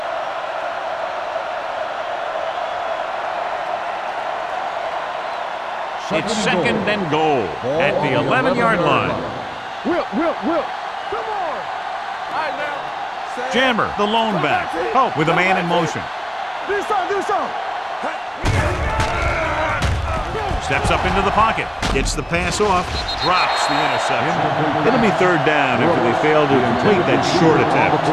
It's second and goal at the 11-yard line. Whip. Come on. All right, now. Jammer, the lone back. Oh, with a man in motion. Do something. Steps up into the pocket. Gets the pass off. Drops the interception. It'll be third down after they fail to complete that short attempt.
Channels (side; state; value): both; identical; correlation 1.00